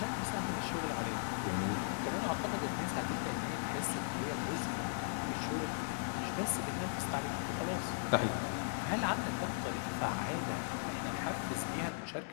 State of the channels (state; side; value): silent; right; 53 dB below the other